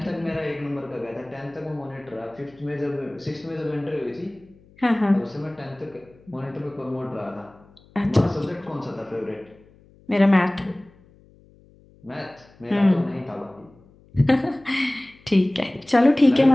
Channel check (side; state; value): left; noise; hum, 28 dB below the sound